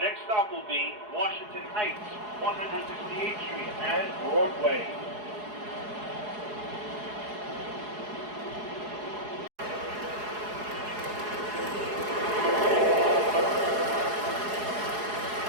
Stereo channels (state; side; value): late; left; 4.8 ms